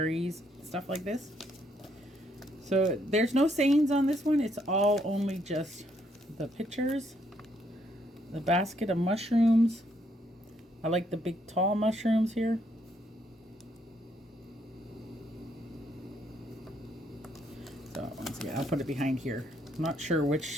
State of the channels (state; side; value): normal; both; correlation 0.72